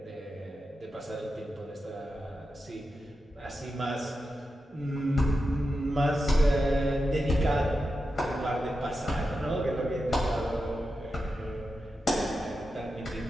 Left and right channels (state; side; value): normal; both; correlation 0.89